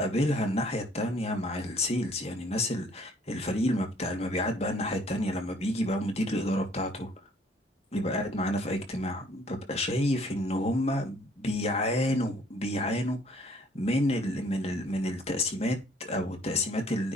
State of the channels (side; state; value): both; normal; correlation 0.60